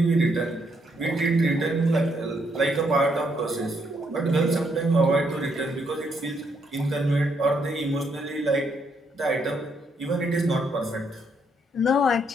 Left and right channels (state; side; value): normal; both; correlation 0.74